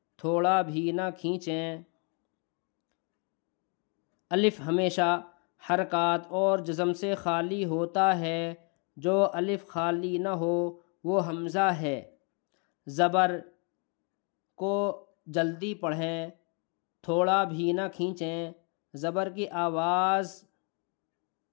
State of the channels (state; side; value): quieter; right; 37.1 dB